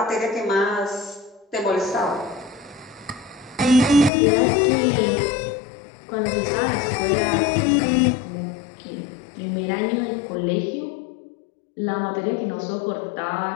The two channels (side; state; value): right; drops out; at 4.1 s